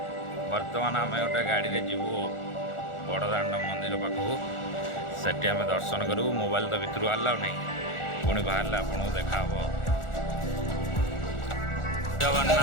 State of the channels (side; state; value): right; late; 1.4 ms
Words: बर्तमान आम गोटे गाड़ी रे जीवु बड़दाण्ड मंदिर मंदिर पाखक सेठी आम दर्शन करूँ मोबाइल तो भितर आलाउ नहीं पुणी बाहर आपको देखा